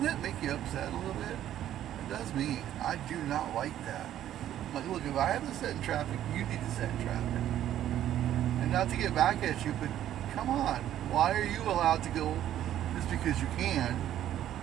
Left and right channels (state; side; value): quieter; left; 11.7 dB